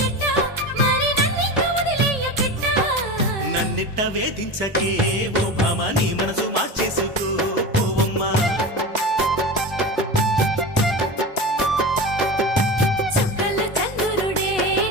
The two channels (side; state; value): both; normal; correlation 0.27